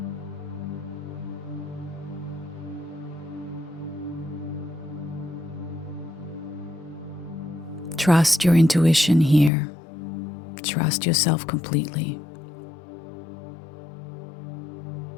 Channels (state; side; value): drops out; right; at 9.5 s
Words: Trust your intuition here. Trust yourself completely.